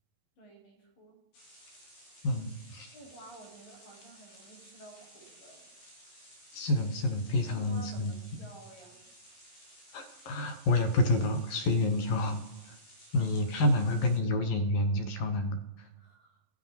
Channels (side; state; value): right; late; 11 ms